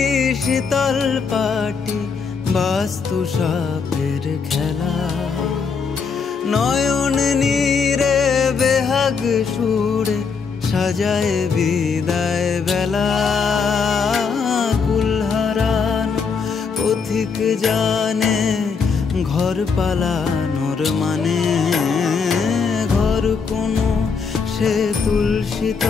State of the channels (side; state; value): right; quieter; 5.5 dB